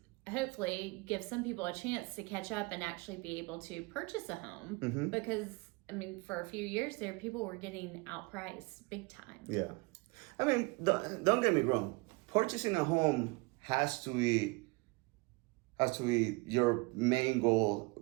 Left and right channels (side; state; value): left; quieter; 26.6 dB